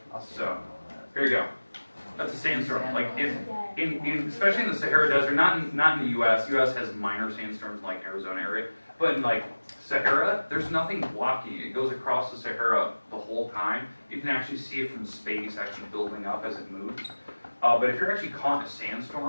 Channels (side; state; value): both; inverted; correlation -1.00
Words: So, here you go. That's a sandstorm. Like especially in the Sahara Desert, not in the U.S. U.S. has minor sandstorms like Arizona area, but in like Sahara, there's nothing blocking it. It goes across the Sahara the whole time. You can actually see it from space, actually building up as it moves. But if you're actually caught in a